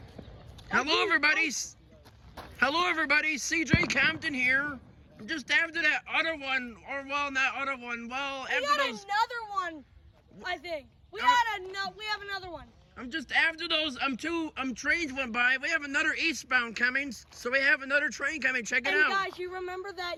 Hello, everybody. Hello, everybody. CJ Compton here. Just after that other one, or well, not other one. Well, We after got those. another one. I think we have another one. I'm just after those. Trains went by. We have another eastbound coming, so we have another train coming. Check it out. Guys, you remember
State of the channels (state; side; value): identical; both; correlation 1.00